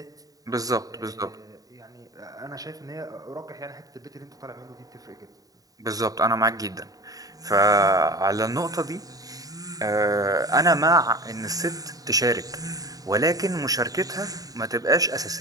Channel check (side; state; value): left; late; 0.18 ms